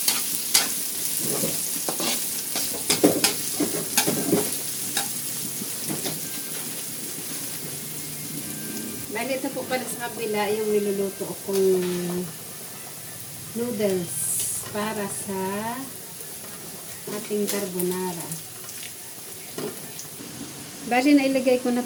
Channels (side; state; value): both; identical; correlation 1.00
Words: Bali, ito po pala sa kabila yung niluluto kong noodles para sa ating carbonara. Bali, nailagay ko na